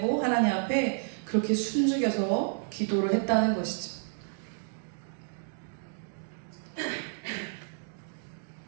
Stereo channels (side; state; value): left; silent; digital silence